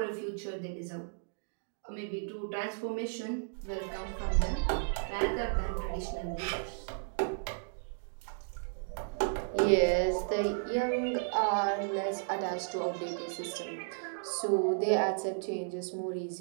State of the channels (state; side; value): silent; left; digital silence